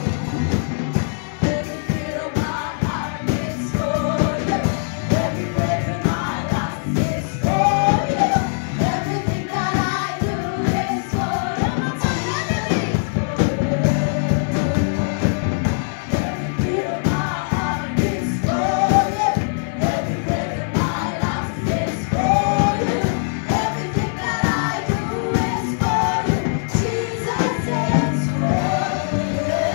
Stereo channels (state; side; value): silent; right; digital silence